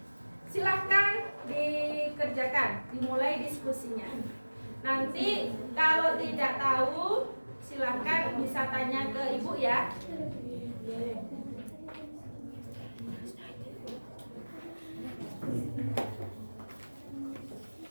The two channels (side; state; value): both; inverted; correlation -1.00